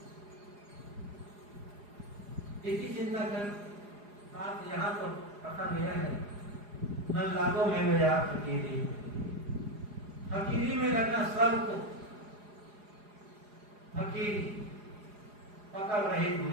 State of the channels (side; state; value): left; late; 4.9 ms